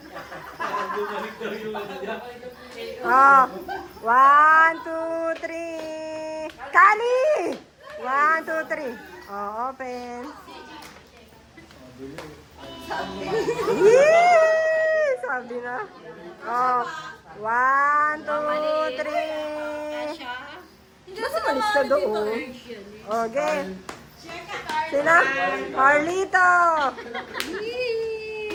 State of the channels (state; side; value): identical; both; correlation 1.00